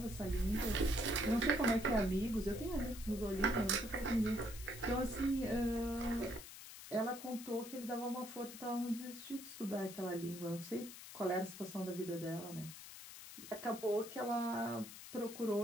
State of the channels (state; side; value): noise; left; hiss, 13 dB below the sound